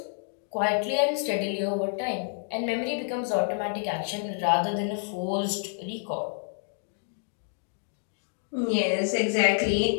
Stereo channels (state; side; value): silent; right; digital silence